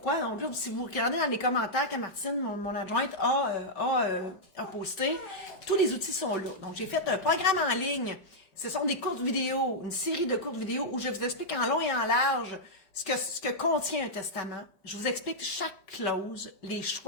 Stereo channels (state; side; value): late; right; 5.2 ms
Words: donc, si vous regardez dans les commentaires que Martine, mon adjointe, a posté, tous les outils sont là. Donc, j'ai fait un programme en ligne. Ce sont des courtes vidéos, une série de courtes vidéos où je vous explique en long et en large ce que contient un testament. Je vous explique chaque clause, les